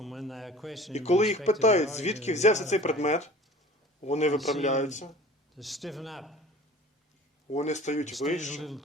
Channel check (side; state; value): both; normal; correlation 0.44